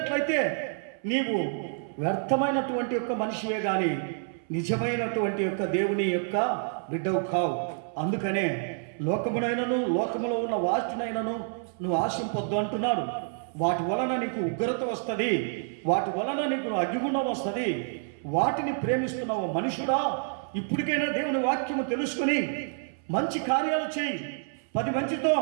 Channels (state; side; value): silent; left; 59 dB below the other